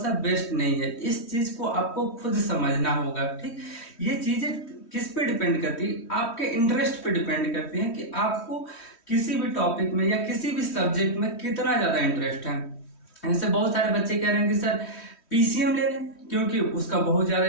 बेस्ट नहीं है। इस चीज को आपको खुद समझना होगा, ठीक। ये चीजें किस पे डिपेंड करती है, आपके इंटरेस्ट पे डिपेंड करती है कि आपको किसी भी टॉपिक में या किसी भी सब्जेक्ट में कितना ज्यादा इंटरेस्ट है। जैसे बहुत सारे बच्चे कह रहे हैं कि सर पीसीएम ले लें क्योंकि उसका बहुत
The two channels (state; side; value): late; right; 3.1 ms